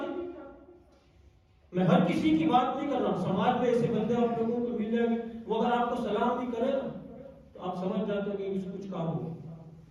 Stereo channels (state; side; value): identical; both; correlation 1.00